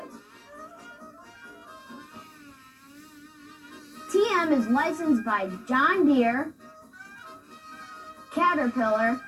TM is licensed by John Deere, Caterpillar,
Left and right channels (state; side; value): identical; both; correlation 1.00